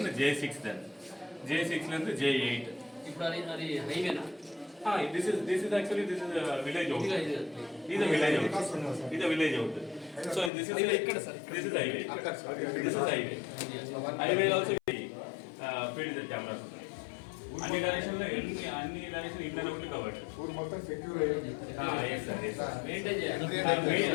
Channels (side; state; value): right; drops out; at 10.5 s